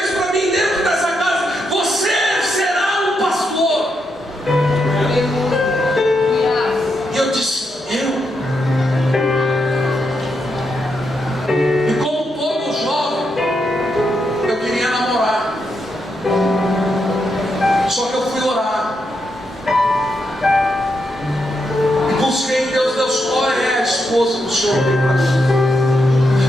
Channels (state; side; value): normal; both; correlation 0.82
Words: para mim dentro dessa casa: você será um pastor. E eu disse: eu? E como todo jovem, eu queria namorar. Só que eu fui orar e busquei em Deus: Deus, qual é a esposa que o Senhor tem para mim?